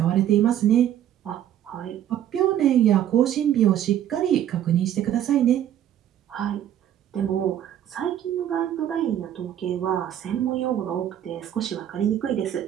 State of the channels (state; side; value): quieter; left; 10.9 dB